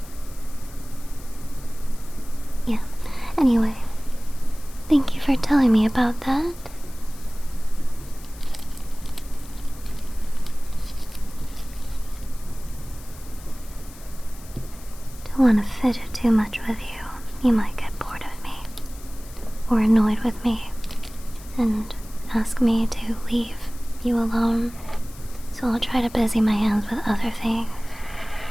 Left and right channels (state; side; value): noise; left; hiss, 20 dB below the sound